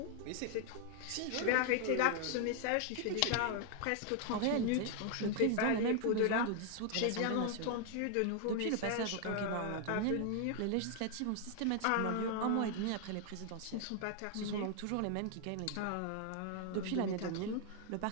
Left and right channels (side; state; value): both; different; correlation 0.00